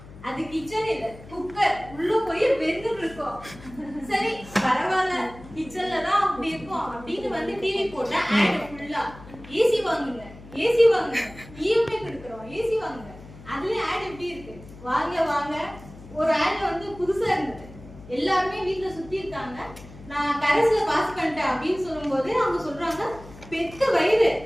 அது கிச்சன் இல்ல, குக்கர். உள்ள போய் வெந்துட்டு இருக்கோம். சரி பரவாயில்ல, கிச்சன்ல தான் அப்படி இருக்கும் அப்படின்னு வந்து டிவி போட்டா ஆட் ஃபுல்லா ஏசி வாங்குங்க, ஏசி வாங்குங்க, இஎம்ஐ கொடுக்குறோம், ஏசி வாங்குங்க. அதுல ஆட் எப்படி இருக்கு? வாங்க வாங்க. ஒரு ஆட் வந்து புதுசா இருந்தது. எல்லாருமே வீட்டுல சுத்தி இருக்காங்க. நான் கரஸ்ல பாஸ் பண்ணிட்டேன் அப்படின்னு சொல்லும்போது அவங்க சொல்றாங்க, பெத்த வயிறு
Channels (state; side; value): noise; left; hum, 18 dB below the sound